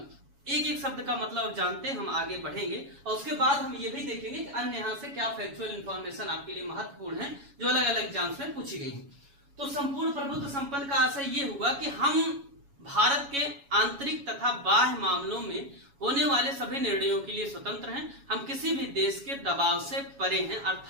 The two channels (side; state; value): left; late; 7.2 ms